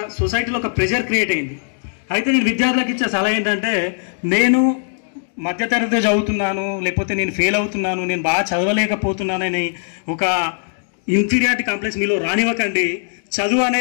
సొసైటీలో ఒక ప్రెషర్ క్రియేట్ అయింది. అయితే నేను విద్యార్థులకు ఇచ్చే సలహా ఏంటంటే, నేను మధ్యతరగతి చదువుతున్నాను, లేకపోతే నేను ఫెయిల్ అవుతున్నాను, నేను బాగా చదవలేకపోతున్నానని ఒక ఇన్ఫీరియారిటీ కాంప్లెక్స్ మీలో రానివ్వకండి. చదువు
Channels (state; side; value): silent; right; digital silence